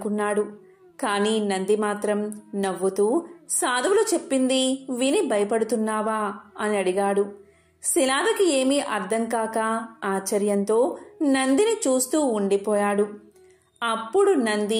కానీ నంది మాత్రం నవ్వుతూ, సాధువులు చెప్పింది విని భయపడుతున్నావా అని అడిగాడు. శిలాదకి ఏమీ అర్థం కాక ఆశ్చర్యంతో నందిని చూస్తూ ఉండిపోయాడు. అప్పుడు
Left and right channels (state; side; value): identical; both; correlation 1.00